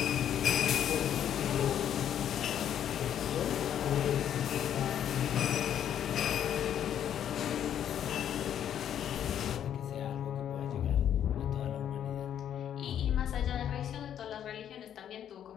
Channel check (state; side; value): quieter; right; 9.8 dB